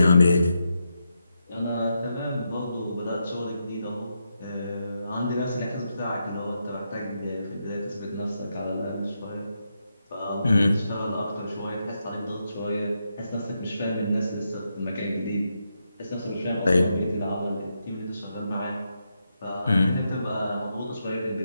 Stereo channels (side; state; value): both; inverted; correlation -0.84